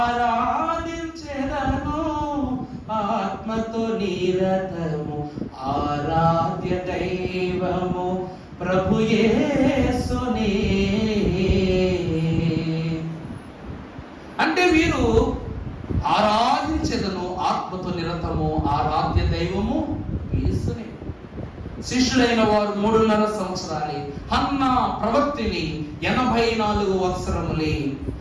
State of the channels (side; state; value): both; identical; correlation 1.00